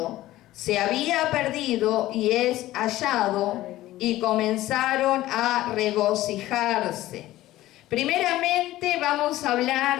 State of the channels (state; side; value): quieter; right; 15.7 dB